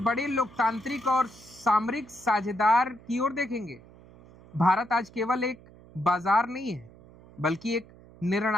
लोकतांत्रिक और सामरिक साझेदार की ओर देखेंगे। भारत आज केवल एक बाजार नहीं है, बल्कि एक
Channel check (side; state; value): right; noise; hum, 23 dB below the sound